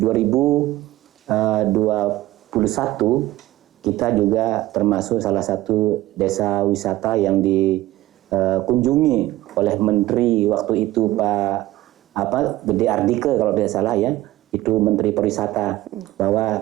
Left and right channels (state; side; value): quieter; left; 16.5 dB